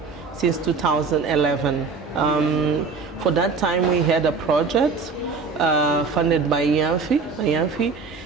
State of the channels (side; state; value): left; quieter; 4.7 dB